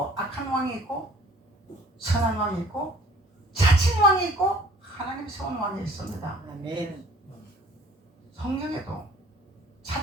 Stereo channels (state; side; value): normal; both; correlation 0.52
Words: 악한 왕이 있고 선한 왕이 있고 자칭 왕이 있고 하나님 세운 왕이 있습니다. 아멘. 성경에도